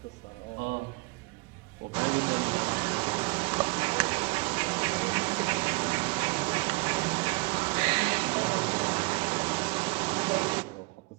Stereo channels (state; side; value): quieter; left; 27.0 dB